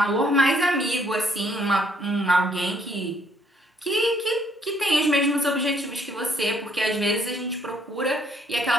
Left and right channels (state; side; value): normal; both; correlation 0.67